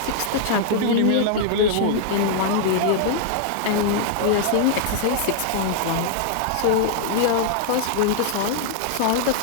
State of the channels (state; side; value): different; both; correlation -0.01